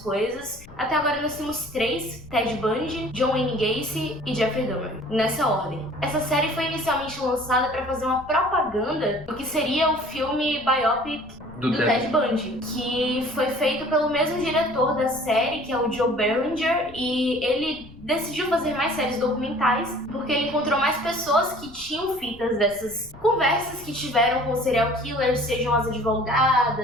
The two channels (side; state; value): left; noise; rumble, 20 dB below the sound